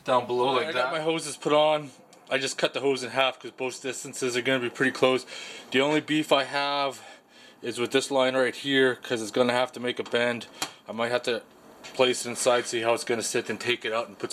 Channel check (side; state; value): both; identical; correlation 1.00